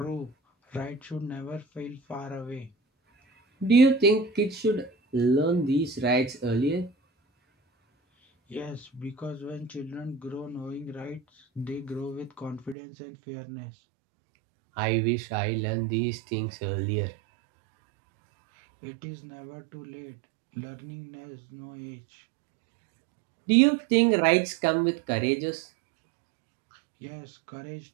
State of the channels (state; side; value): drops out; left; at 12.8 s